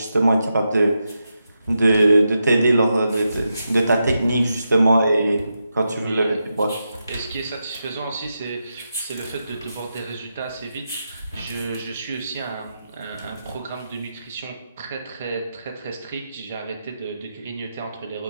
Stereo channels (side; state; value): both; inverted; correlation -0.87